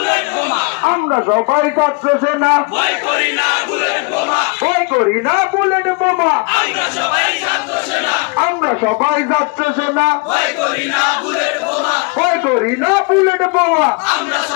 বোমা, আমরা সবাই ছাত্র সেনা ভয় করি না বুলেট বোমা, ভয় করি না বুলেট বোমা আমরা সবাই ছাত্র সেনা, আমরা সবাই ছাত্র সেনা ভয় করি না বুলেট বোমা, ভয় করি না বুলেট বোমা আমরা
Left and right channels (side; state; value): right; quieter; 30.6 dB